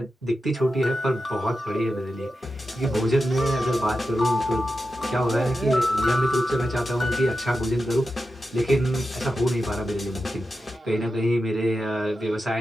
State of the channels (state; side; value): normal; both; correlation 0.90